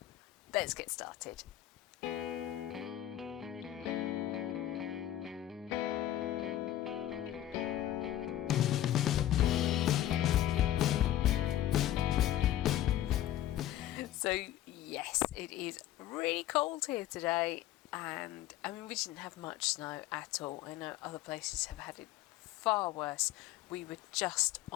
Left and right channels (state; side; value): quieter; right; 12.8 dB